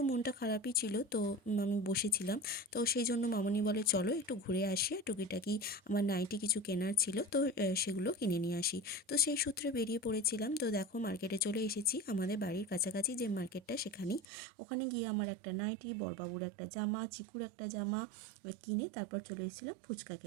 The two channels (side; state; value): left; drops out; at 14.2 s